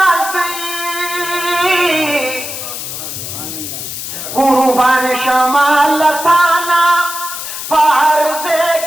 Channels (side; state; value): left; noise; hiss, 7 dB below the sound